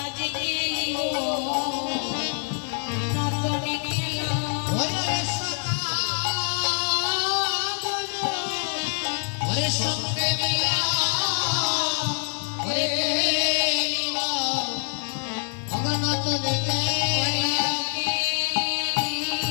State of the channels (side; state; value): right; silent; 61 dB below the other